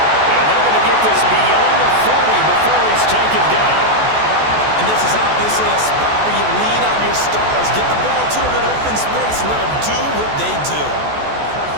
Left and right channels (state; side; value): late; left; 14 ms